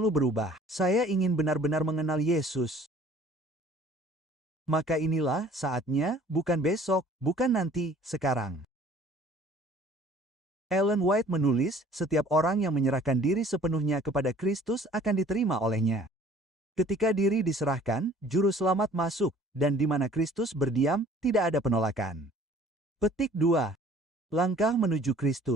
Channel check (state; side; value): normal; both; correlation 0.52